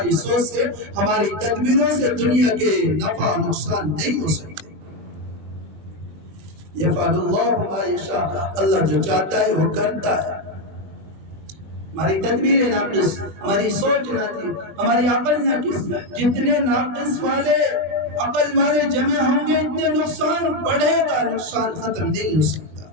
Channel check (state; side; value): late; left; 20 ms